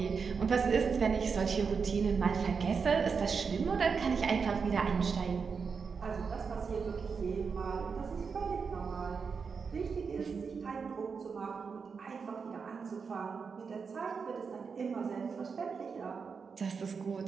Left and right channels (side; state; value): left; quieter; 5.6 dB